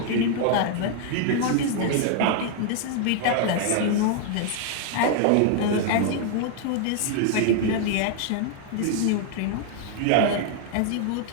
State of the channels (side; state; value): both; different; correlation 0.00